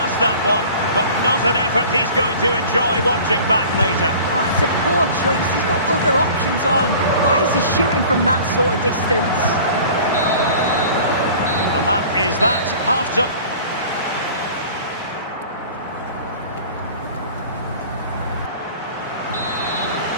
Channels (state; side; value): inverted; both; correlation -0.44